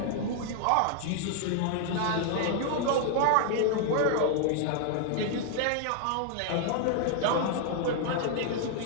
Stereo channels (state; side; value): different; both; correlation 0.00